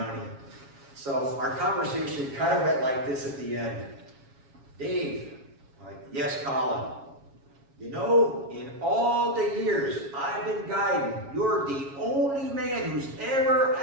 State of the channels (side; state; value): left; late; 7.3 ms